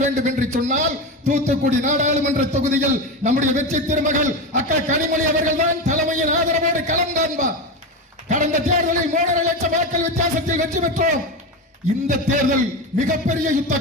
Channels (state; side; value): normal; both; correlation 0.19